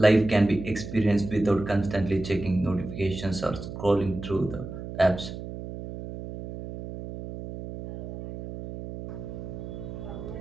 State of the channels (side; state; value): right; noise; hum, 9 dB below the sound